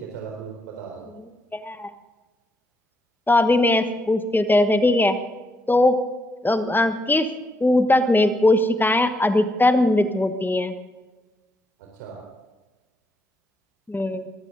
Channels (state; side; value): normal; both; correlation 0.78